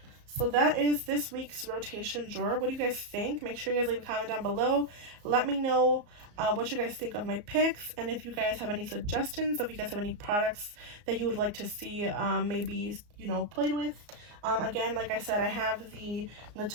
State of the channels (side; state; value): left; late; 34 ms